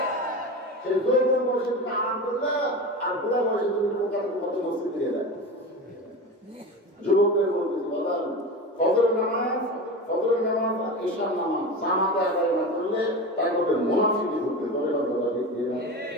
সেই যৌবন বয়সে তুমি আরাম করলে আর বুড়া বয়সে তুমি পোকার মতো মস্তি দিয়ে দেয় যুবকদের বলতেছি বাজার ফজরের নামাজ ঈশার নামাজ জামাতে আদায় না করলে তার মধ্যে মুনাফিকি ঢুকবে তবে কথা ঠিক কিনা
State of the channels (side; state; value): both; normal; correlation 0.27